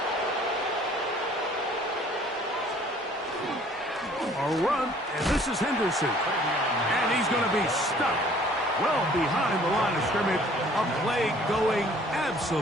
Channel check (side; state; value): both; normal; correlation 0.55